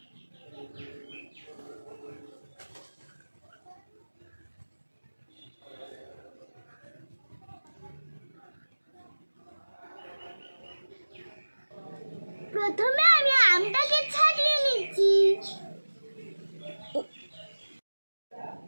প্রথমে আমি আমটাকে ছাড়িয়ে নিচ্ছি।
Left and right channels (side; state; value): both; inverted; correlation -1.00